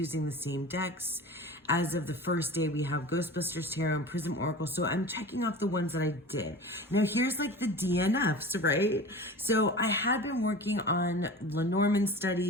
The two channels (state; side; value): normal; both; correlation 0.35